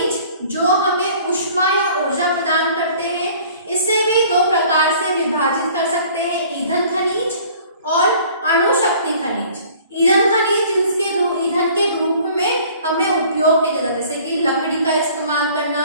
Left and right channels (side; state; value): both; inverted; correlation -0.51